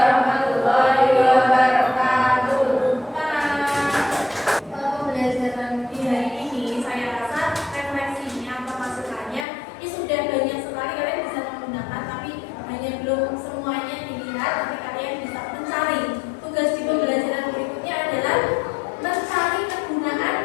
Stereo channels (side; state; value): right; drops out; at 9.5 s